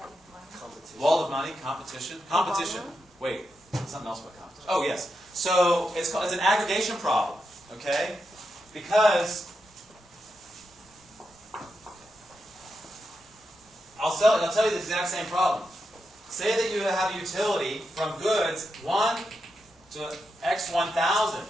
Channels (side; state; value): both; normal; correlation 0.86